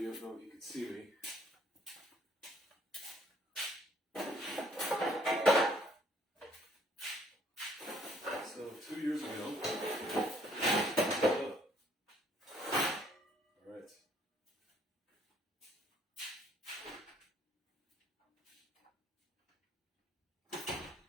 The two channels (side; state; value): both; normal; correlation 0.63